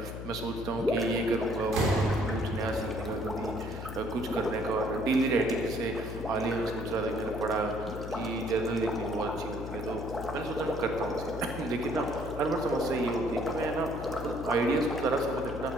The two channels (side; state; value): left; noise; hum, 8 dB below the sound